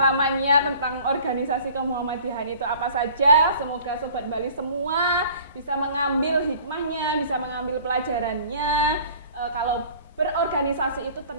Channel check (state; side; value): inverted; both; correlation -0.49